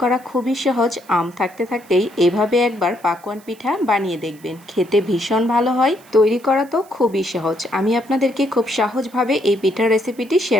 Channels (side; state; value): right; noise; hiss, 26 dB below the sound